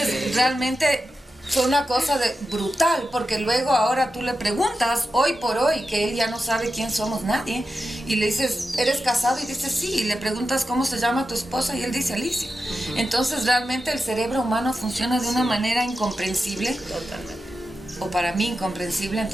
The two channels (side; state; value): both; normal; correlation 0.90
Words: realmente fue una cosa brutal, porque luego ahora tú le preguntas, hoy por hoy, que él ya no sabe quién somos nadie, y le dices, ¿eres casado? Y dice, sí, y le preguntas cómo se llama tu esposa, y él dice, Alicia. Entonces realmente el cerebro humano funciona de una manera incomprensible. Totalmente. O para mí incomprensible,